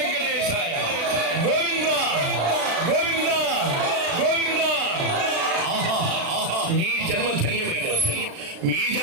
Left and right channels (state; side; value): late; left; 36 ms